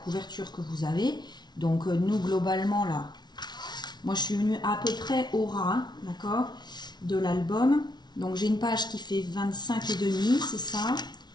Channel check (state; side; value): late; right; 0.20 ms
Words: que vous avez. Donc, nous, globalement, là, moi, je suis venue à peu près au ras, hein, d'accord, de l'album. Donc, j'ai une page qui fait 25,5, c'est ça,